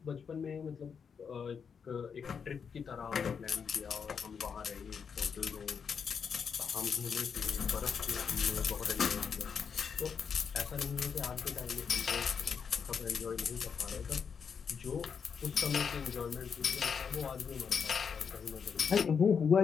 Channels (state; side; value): quieter; right; 6.5 dB